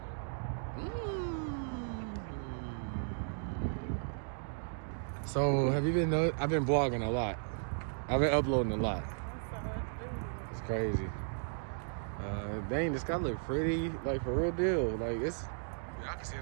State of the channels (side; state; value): left; silent; digital silence